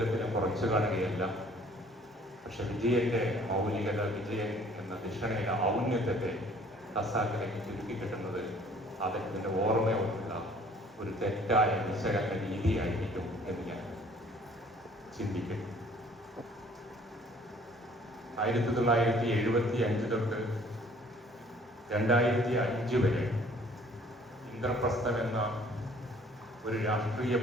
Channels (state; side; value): normal; both; correlation 0.56